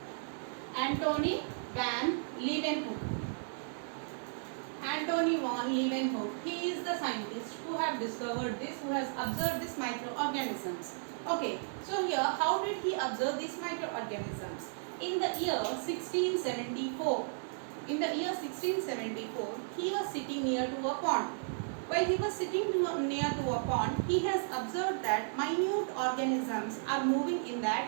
Antony van Leeuwenhoek. Antony van Leeuwenhoek. He is the scientist who have discovered this, who has observed these microorganisms. Okay, so here how did he observe these microorganisms? In the year 1674. In the year 1674, he was sitting near to a pond. While he was sitting near to a pond, he has observed that minute organisms are moving in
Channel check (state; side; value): silent; left; 55 dB below the other